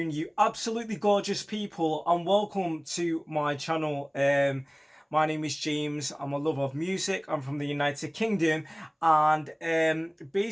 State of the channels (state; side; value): identical; both; correlation 1.00